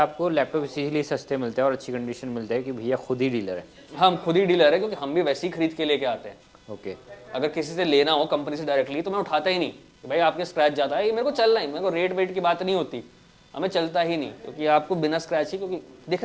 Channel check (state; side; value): identical; both; correlation 1.00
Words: लैपटॉप इसीलिए सस्ते मिलते हैं और अच्छी कंडीशन मिलते हैं कि भैया खुद ही डीलर है। हम खुद ही डीलर है, क्योंकि हम भी वैसे ही खरीद के लेके आते हैं। ओके। अगर किसी से लेना हो कंपनी से डायरेक्टली तो मैं उठाता ही नहीं कि भाई आपके स्क्रैच जाता है, ये मेरे को चलना ही, मेरे को रेट वेट की बात नहीं होती, हमें चलता ही नहीं, क्योंकि आपको बिना स्क्रैच ही, क्योंकि